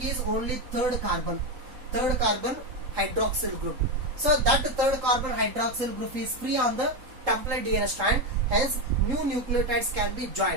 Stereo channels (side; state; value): left; late; 3.9 ms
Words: only third carbon hydroxyl group. So that third carbon hydroxyl group is free on the template DNA strand, hence new nucleotides can be